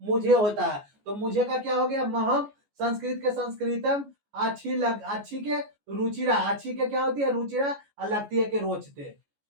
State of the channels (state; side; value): late; left; 14 ms